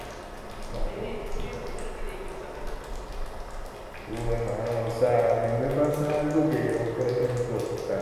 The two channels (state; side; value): identical; both; correlation 1.00